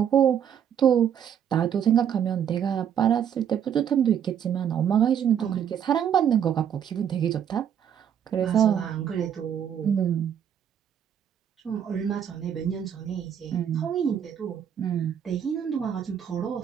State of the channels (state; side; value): quieter; left; 8.8 dB